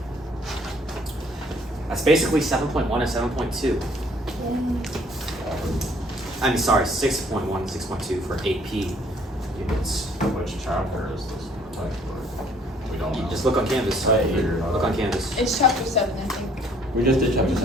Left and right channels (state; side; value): normal; both; correlation 0.60